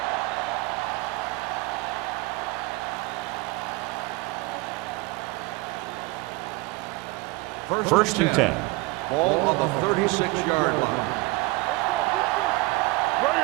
line. First and 10. Ball on the 36-yard line. Let's go, defense. Bring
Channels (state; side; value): quieter; left; 23.1 dB